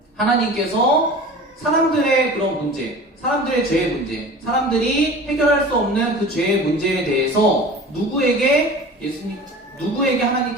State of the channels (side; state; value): both; normal; correlation 0.38